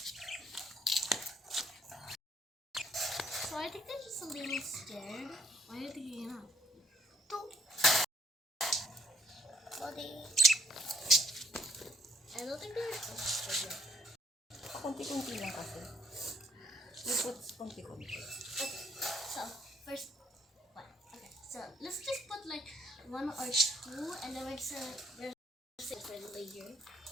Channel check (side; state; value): both; normal; correlation 0.63